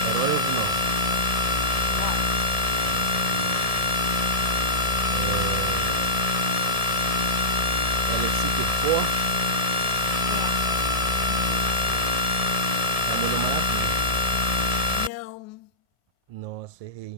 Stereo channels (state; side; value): late; left; 1.7 ms